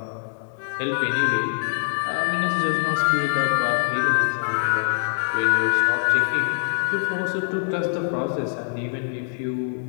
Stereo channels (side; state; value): right; silent; digital silence